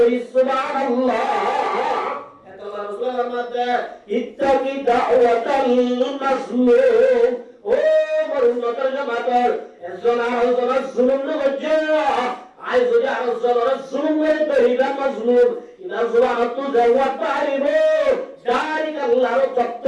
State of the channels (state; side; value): identical; both; correlation 1.00